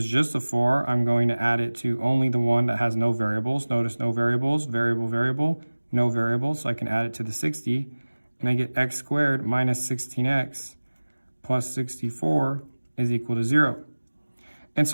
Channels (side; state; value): both; inverted; correlation -1.00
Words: just a 4, I'm going to add it to only the one that has no variables. Notice no variables, variable, variable, no variables. So I can add it to the 60, and I get x squared minus 16x plus 64 is equal to 0. And